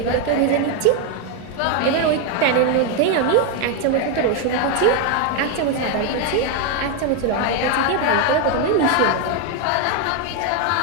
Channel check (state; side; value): different; both; correlation 0.01